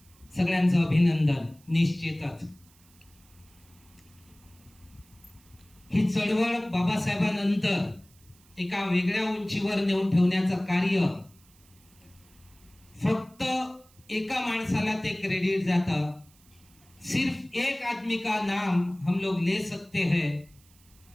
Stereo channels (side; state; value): right; noise; hiss, 29 dB below the sound